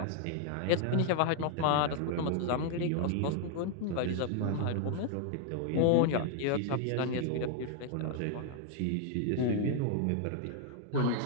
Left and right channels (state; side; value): different; both; correlation 0.00